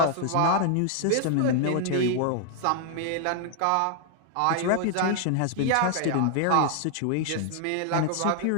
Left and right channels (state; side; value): different; both; correlation 0.00